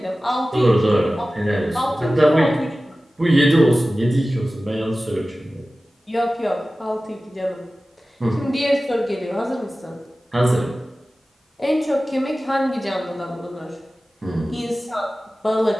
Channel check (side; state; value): both; normal; correlation 0.96